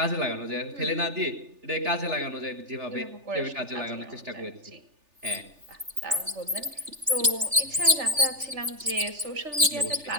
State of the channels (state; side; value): late; left; 3.4 ms